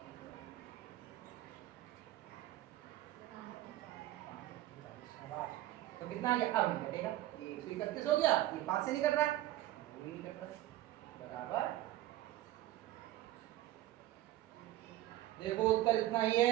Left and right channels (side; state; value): left; quieter; 15.1 dB